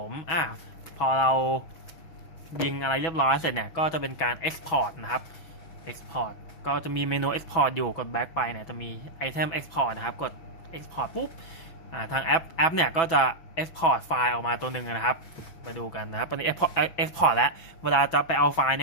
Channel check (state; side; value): late; right; 6.1 ms